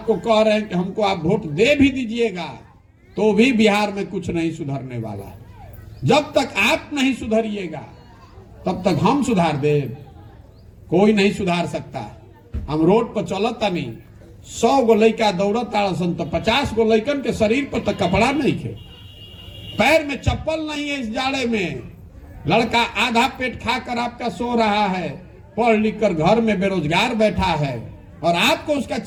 कह रहे हैं कि हमको आप वोट दे भी दीजिएगा तो भी बिहार में कुछ नहीं सुधरने वाला है। जब तक आप नहीं सुधरिएगा तब तक हम सुधार दे, कोई नहीं सुधार सकता। हम रोड पर चलता नहीं, 100 गो लड़का दौड़ता तो 50 गो लड़कन के शरीर पर तो कपड़ा नहीं खे, पैर में चप्पल नहीं है। इस जाड़े में लड़का आधा पेट खाकर आपका सो रहा है, पढ़ लिख कर घर में बेरोजगार बैठा है और आपको उसका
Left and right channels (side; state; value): both; identical; correlation 1.00